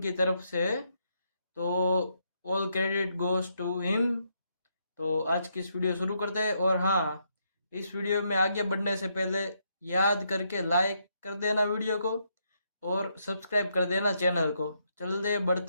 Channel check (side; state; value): both; inverted; correlation -0.76